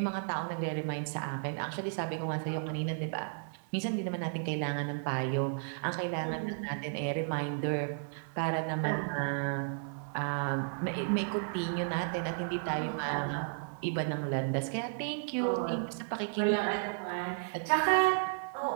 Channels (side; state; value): left; silent; digital silence